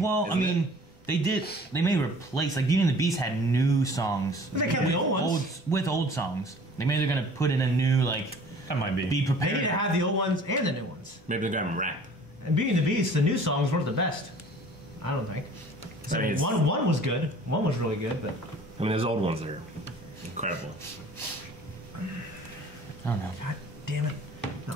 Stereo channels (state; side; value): normal; both; correlation 0.49